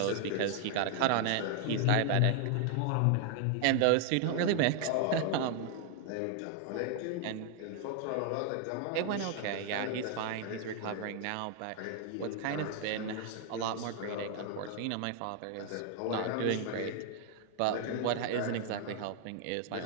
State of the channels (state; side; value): different; both; correlation 0.00